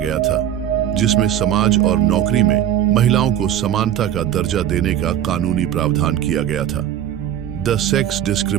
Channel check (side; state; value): left; quieter; 10.7 dB